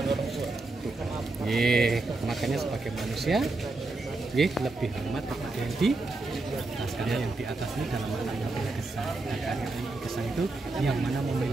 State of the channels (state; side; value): quieter; left; 3.2 dB